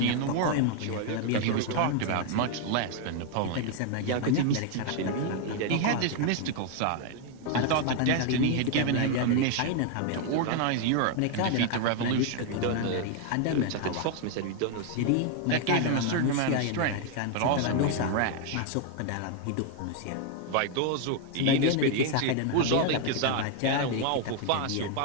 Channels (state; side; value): different; both; correlation 0.00